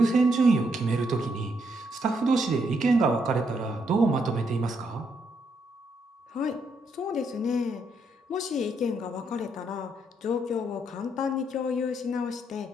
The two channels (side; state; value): both; normal; correlation 0.76